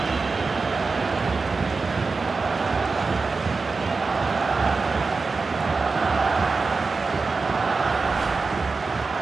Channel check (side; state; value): left; quieter; 4.2 dB